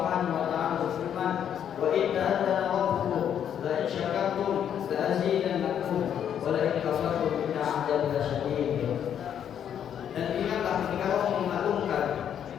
wa taala berfirman, "Wa idza adzana rabbukum la in syakartum la azidannakum wa la in kafartum inna 'adzabi lasyadid." Dan ingatlah ketika Allah memaklumkan,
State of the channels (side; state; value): right; quieter; 9.1 dB